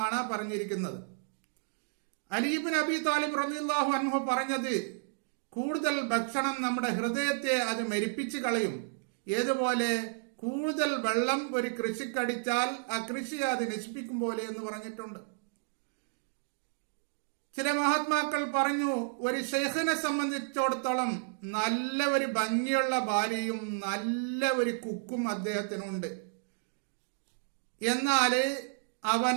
പറഞ്ഞിരിക്കുന്നത്. അലി ഇബ്നു അബി താലിബ് റളിയല്ലാഹു അൻഹു പറഞ്ഞത്, കൂടുതൽ ഭക്ഷണം നമ്മുടെ ഹൃദയത്തെ അത് മരിപ്പിച്ചു കളയും. ഏതുപോലെ കൂടുതൽ വെള്ളം ഒരു കൃഷിക്കടിച്ചാൽ ആ കൃഷി അത് നശിപ്പിക്കും പോലെ എന്ന് പറഞ്ഞിട്ടുണ്ട്. ചില മഹാത്മാക്കൾ പറഞ്ഞു, ഒരു ഷെയ്ഖിനെ സംബന്ധിച്ചിടത്തോളം നല്ല ഒരു ഭംഗിയുള്ള ഭാര്യയും നല്ല ഒരു കുക്കും അദ്ദേഹത്തിനുണ്ട്. എന്നാല്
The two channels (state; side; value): silent; left; digital silence